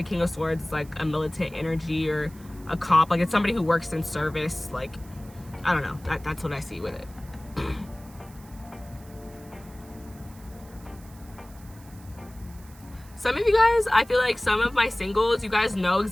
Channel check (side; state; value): right; noise; hiss, 24 dB below the sound